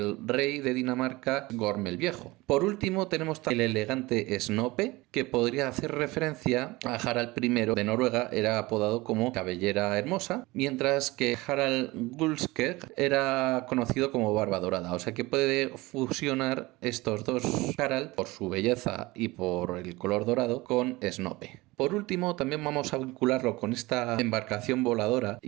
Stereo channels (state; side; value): quieter; left; 21.3 dB